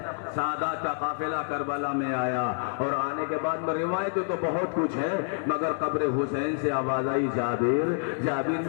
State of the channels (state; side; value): silent; right; digital silence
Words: سعادات کا قافلہ کربلا میں آیا، اور آنے کے بعد میں روایتیں تو بہت کچھ ہے، مگر قبر حسین سے آواز آئی جابر جابر